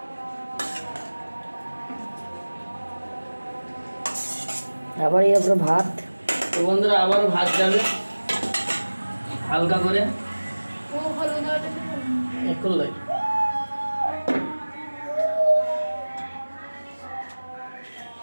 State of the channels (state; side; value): inverted; both; correlation -1.00